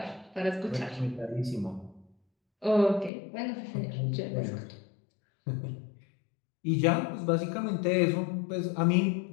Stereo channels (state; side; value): drops out; right; at 3.1 s